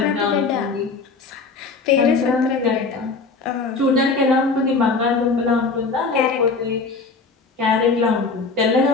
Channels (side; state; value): right; quieter; 4.3 dB